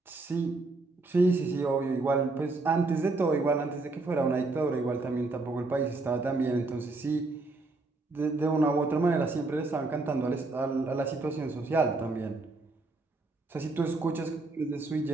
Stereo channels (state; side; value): quieter; left; 3.4 dB